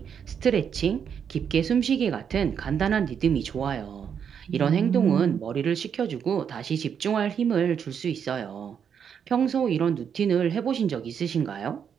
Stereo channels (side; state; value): left; quieter; 7.6 dB